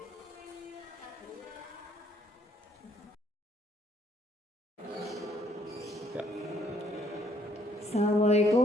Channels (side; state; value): both; normal; correlation 0.65